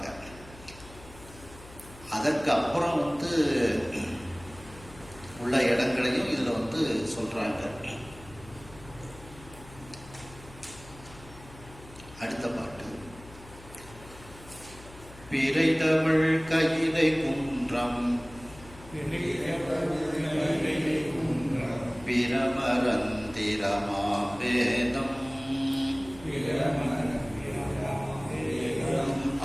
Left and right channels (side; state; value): left; noise; hum, 19 dB below the sound